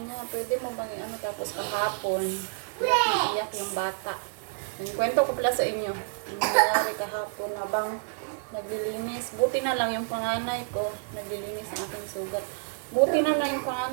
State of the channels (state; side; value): silent; left; digital silence